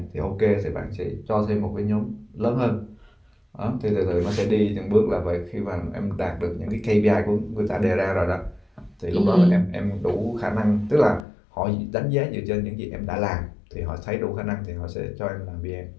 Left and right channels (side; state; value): right; drops out; at 11.2 s